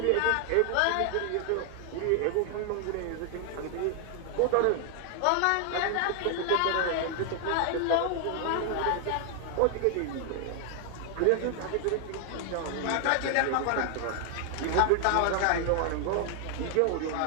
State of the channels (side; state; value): both; different; correlation 0.00